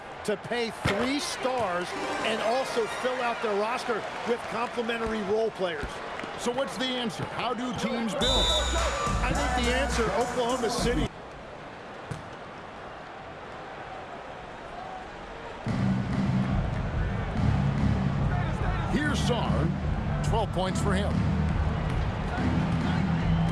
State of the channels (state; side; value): identical; both; correlation 1.00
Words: to pay 3 stars and also fill out their roster with complementary role players. So what's the answer? How do teams build? I think the answer, Oklahoma City. Here's Sarr. 12 points for him.